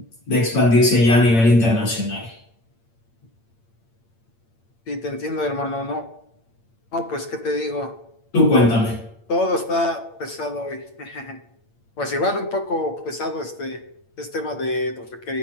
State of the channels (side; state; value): right; late; 8.7 ms